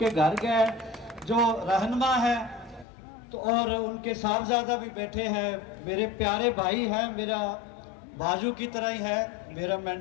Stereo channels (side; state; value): right; drops out; at 2.9 s